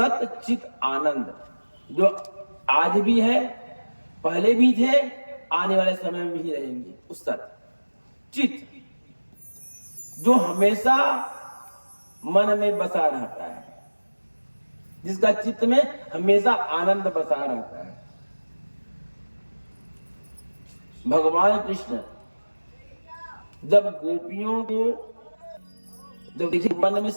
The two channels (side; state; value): both; inverted; correlation -1.00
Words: चित आनंद, जो आज भी है, पहले भी थे, आने वाले समय में भी रहेंगे, उस सत चित जो हमेशा मन में बसा रहता है, जिसका चित्त में हमेशा आनंद बसा रहता है। भगवान कृष्ण जब गोपियों को, जब देखिए मन में